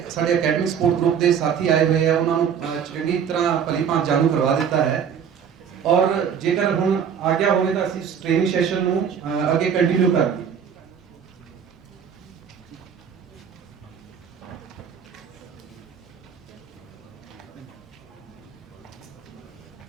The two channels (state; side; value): quieter; left; 7.7 dB